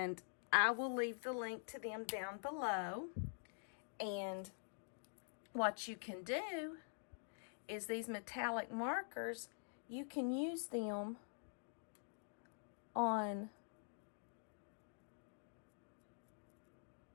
I will leave the link to them down below. And what you can do is these metallic markers, you can use them on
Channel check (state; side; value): silent; right; digital silence